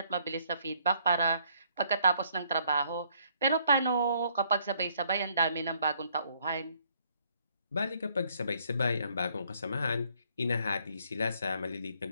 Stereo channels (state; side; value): inverted; both; correlation -0.67